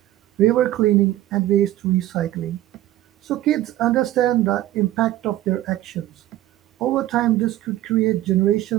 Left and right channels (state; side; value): quieter; left; 14.6 dB